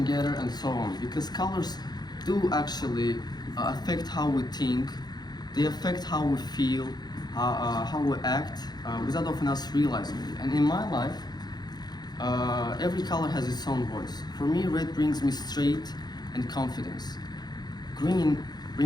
getter, and so on. Because colors do actually affect how we think, they affect how we feel, how we act, without often us realizing it. And in my life, every color has its own voice. For me, red brings me straight and confidence. Green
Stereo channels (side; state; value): right; late; 0.20 ms